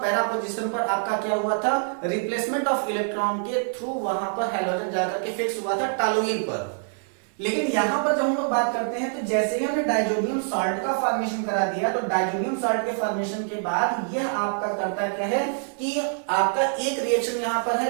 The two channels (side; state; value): left; silent; digital silence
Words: पैरा पोजीशन पर आपका क्या हुआ था, रिप्लेसमेंट ऑफ इलेक्ट्रॉन के थ्रू वहां पर हैलोजन जाकर के फिक्स हुआ था टालुइन पर। लेकिन यहां पर जब हम लोग बात करते हैं तो जैसे ही हमने डाइजोनियम सॉल्ट का फॉर्मेशन करा दिया, तो डाइजोनियम सॉल्ट के फॉर्मेशन के बाद यह आपका करता क्या है कि आपका एक रिएक्शन यहां पर